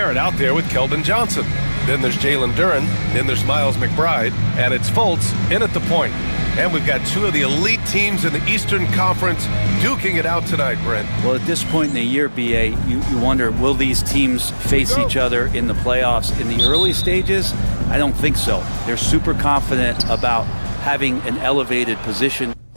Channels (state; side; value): inverted; both; correlation -1.00